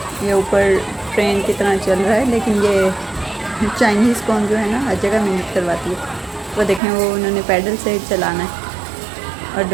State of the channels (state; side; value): drops out; left; at 6.8 s